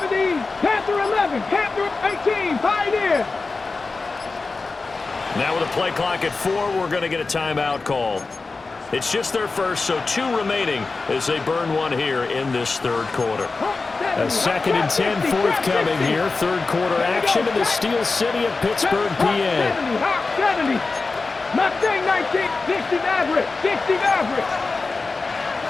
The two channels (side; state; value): right; quieter; 3.9 dB